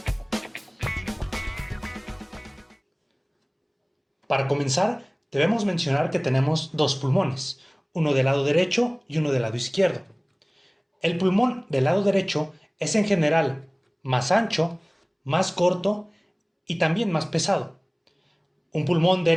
Para comenzar, debemos mencionar que tenemos dos pulmones, uno del lado derecho y uno del lado izquierdo. El pulmón del lado derecho es en general más ancho, más corto y también más pesado. Un pulmón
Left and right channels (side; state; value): both; identical; correlation 1.00